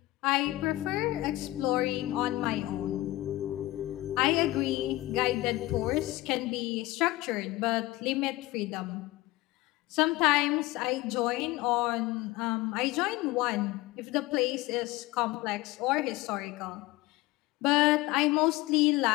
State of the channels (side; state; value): right; quieter; 18.3 dB